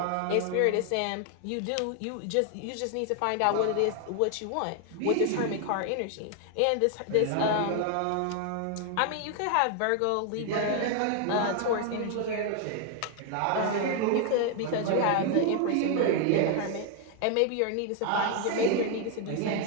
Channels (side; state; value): both; different; correlation 0.00